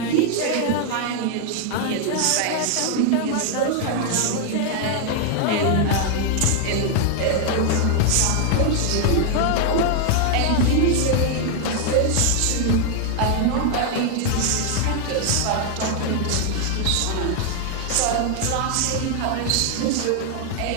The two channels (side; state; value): both; different; correlation 0.00